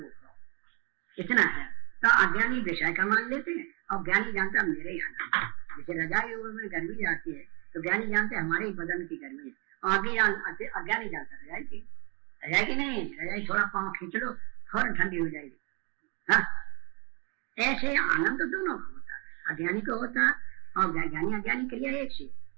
हो, इतना है। तो अज्ञानी विषय का मान लेते हैं और ज्ञानी जानता मेरे ही आनंद। जैसे रजाई में गर्मी जाती है तो ज्ञानी जानते हमारे ही बदन की गर्मी है, और अज्ञानी जानता रजाई की नहीं, रजाई थोड़ा पाँव खींच लो फौरन ठंडी हो जाएगी। हाँ ऐसे आनंद दोनों को होता है, अज्ञानी को होता और ज्ञानी अज्ञानी के लिए एक से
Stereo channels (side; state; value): left; quieter; 33.0 dB